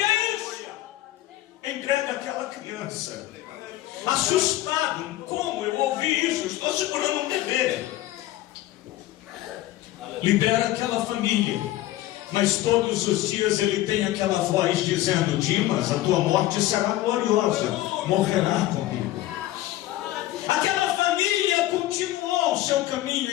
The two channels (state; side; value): quieter; right; 15.5 dB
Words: isso? Entrega aquela criança. Assustado: como eu ouvi isso? Estou segurando um bebê. Libera aquela família. Mas todos os dias ele tem aquela voz dizendo: Dimas, a tua morte será gloriosa. Morrerá comigo. Aquela família continuou o seu caminho